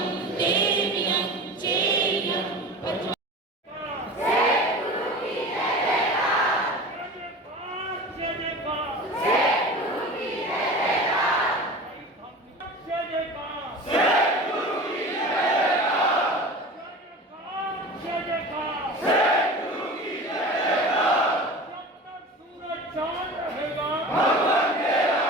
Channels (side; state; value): both; normal; correlation 0.34